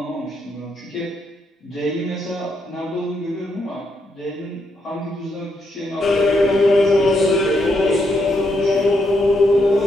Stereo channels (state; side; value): normal; both; correlation 0.79